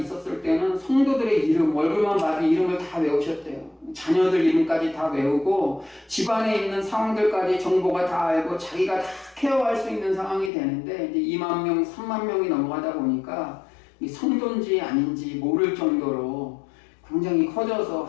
때는 성도들의 이름, 얼굴만 봐도 이름을 다 외우셨대요. 자녀들 이름까지 다 외우고 집안에 있는 상황들까지 정보가 다 알고 자기가 다 케어할 수 있는 상황이 되는데 이제 2만 명, 3만 명이 넘어가다 보니까 이 성도인지 아닌지 모를 정도로 굉장히 커져서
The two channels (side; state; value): right; drops out; at 10.5 s